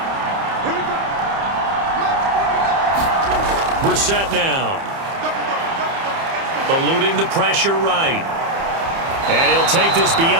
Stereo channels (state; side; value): late; left; 30 ms